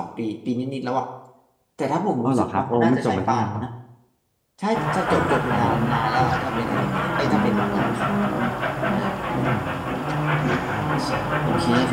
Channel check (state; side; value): identical; both; correlation 1.00